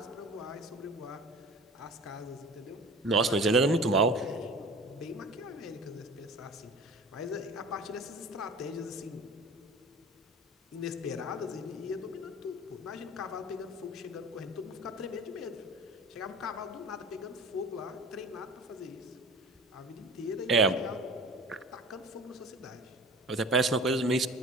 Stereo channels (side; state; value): both; normal; correlation 0.40